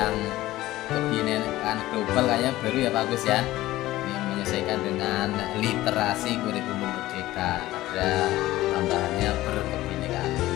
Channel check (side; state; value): right; quieter; 16.4 dB